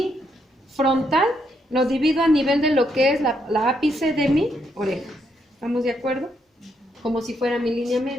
frontal lo divido a nivel de lo que es la ápice de mi oreja. ¿Estamos de acuerdo? Como si fuera mi línea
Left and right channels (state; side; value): normal; both; correlation 0.76